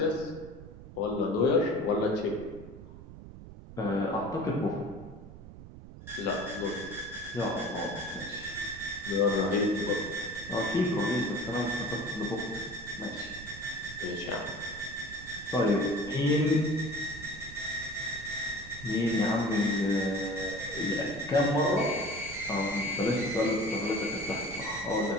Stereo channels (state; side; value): noise; right; rumble, 15 dB below the sound